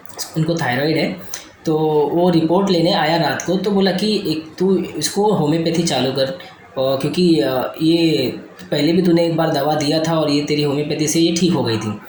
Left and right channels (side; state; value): both; identical; correlation 1.00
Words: उनको थायराइड है। तो वो रिपोर्ट लेने आया रात को, तो बोला कि एक तू इसको होम्योपैथी चालू कर, और क्योंकि ये पहले भी तूने एक बार दवा दिया था और ये तेरी होम्योपैथी से ये ठीक हो गई थी।